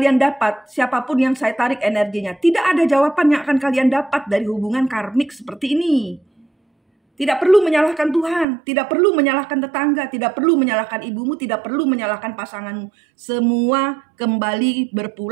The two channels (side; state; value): left; drops out; at 8.5 s